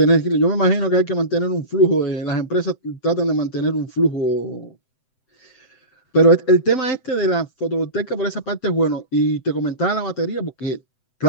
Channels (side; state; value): right; late; 7.8 ms